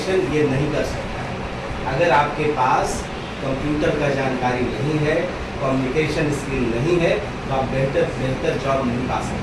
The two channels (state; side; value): identical; both; correlation 1.00